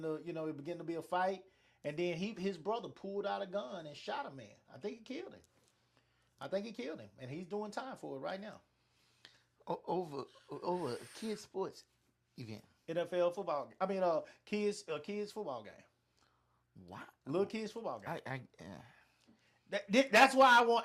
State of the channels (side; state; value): both; identical; correlation 1.00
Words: be a fight, and then his brother pulled out a gun and shot a man. I think he killed him, and he's doing time for it right now. Over a kids sports event. NFL football. Kids football game. Wow. Little kids football game. That's